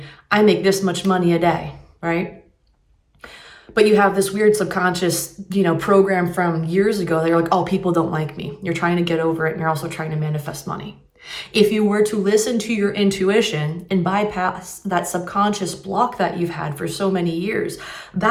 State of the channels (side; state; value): both; identical; correlation 1.00